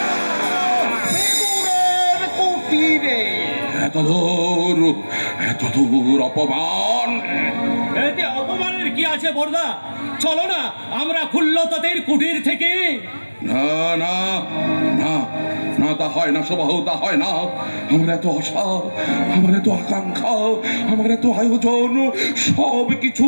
কুটিরে। এত দূর অপমান। এতে অপমানের কি আছে বর্দা? চলো না আমরা খুল্লতাদের কুটির থেকে। না না না না, তা হয় না সুবাহু, তা হয় না। আমার এত আশা, আমার এত আকাঙ্ক্ষা, আমার এত আয়োজন, সব কিছু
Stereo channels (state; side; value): inverted; both; correlation -1.00